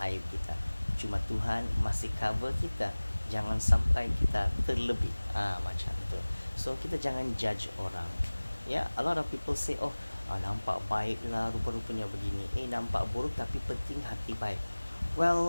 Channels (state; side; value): inverted; both; correlation -1.00